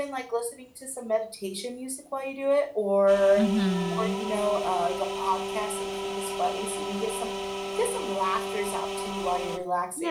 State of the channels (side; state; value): both; identical; correlation 1.00